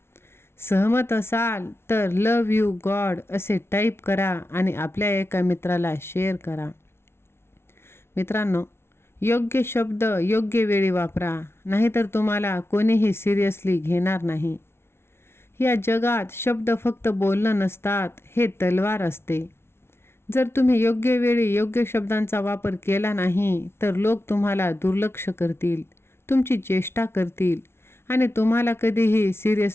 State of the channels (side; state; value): right; late; 0.12 ms